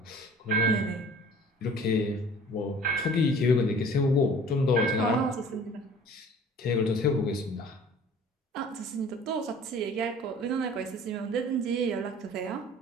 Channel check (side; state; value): both; normal; correlation 0.47